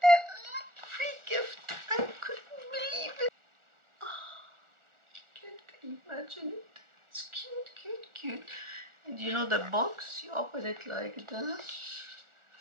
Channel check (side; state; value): left; late; 1.4 ms